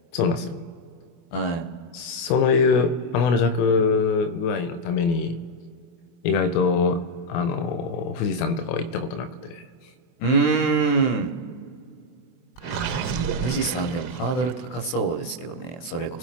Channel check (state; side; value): late; right; 24 ms